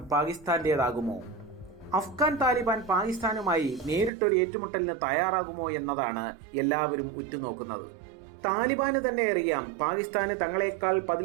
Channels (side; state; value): left; drops out; at 4.1 s